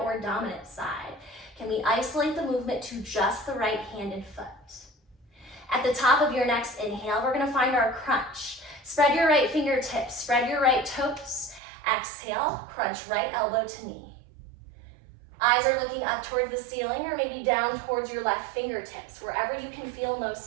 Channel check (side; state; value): left; drops out; at 11.6 s